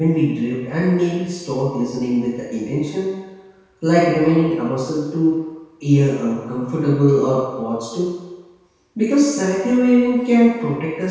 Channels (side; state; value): both; identical; correlation 1.00